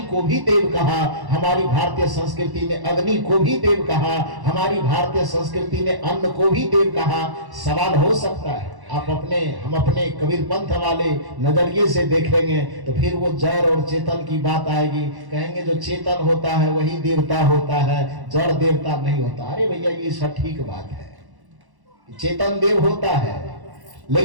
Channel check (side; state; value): left; late; 1.1 ms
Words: को भी देव कहा, हमारी भारतीय संस्कृति ने अग्नि को भी देव कहा, हमारी भारतीय संस्कृति ने अन्न को भी देव कहा। सवाल हो सकता है हम अपने कबीर पंथ वाले नजरिए से देखेंगे तो फिर वो जड़ और चेतन की बात आएगी। कहेंगे जो चेतन होता है वही देवता होता है, जड़ देवता नहीं होता। अरे भैया ये सटीक बात है, चेतन देव होता है,